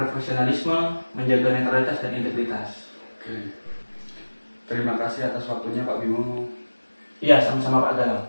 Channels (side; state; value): both; inverted; correlation -1.00